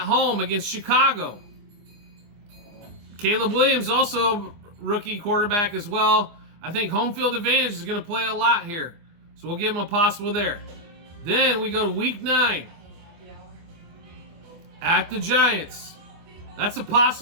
home against Chicago. Caleb Williams, also rookie quarterback as well. I think home field advantage is going to play a lot here. So we'll give him a possible there. Then we go to Week 9. At the Giants. That's a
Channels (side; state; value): left; late; 24 ms